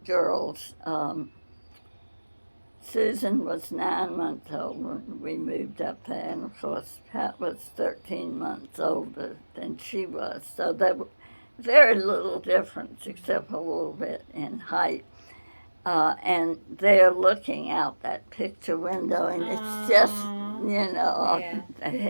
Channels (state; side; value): inverted; both; correlation -1.00